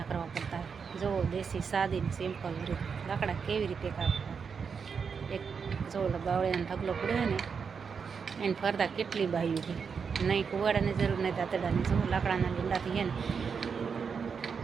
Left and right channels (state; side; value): quieter; left; 6.0 dB